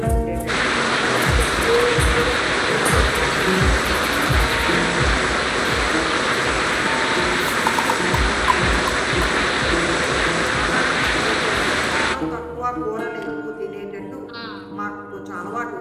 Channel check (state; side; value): identical; both; correlation 1.00